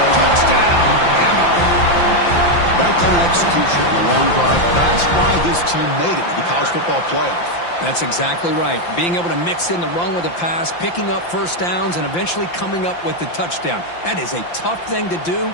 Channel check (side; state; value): right; late; 5.8 ms